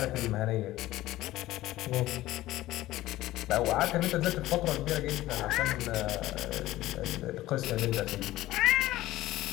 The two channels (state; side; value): quieter; right; 16.1 dB